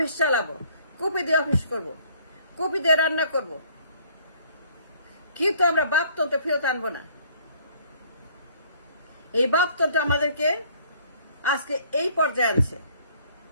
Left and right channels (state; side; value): inverted; both; correlation -0.59